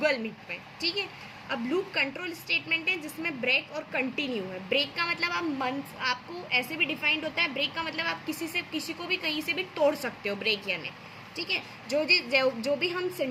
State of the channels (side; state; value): both; identical; correlation 1.00